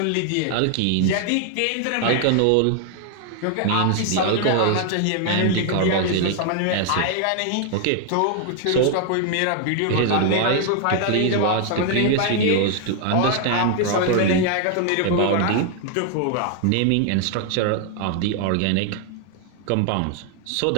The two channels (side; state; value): both; different; correlation 0.00